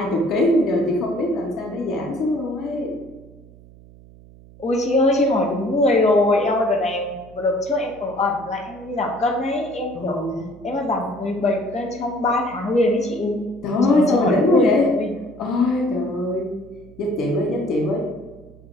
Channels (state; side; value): noise; right; hum, 22 dB below the sound